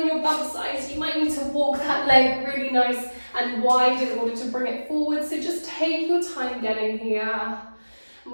your bump size, you might need to walk that leg really nice and wide in order to bring it forward. So just take your time getting here. And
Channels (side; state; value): both; inverted; correlation -1.00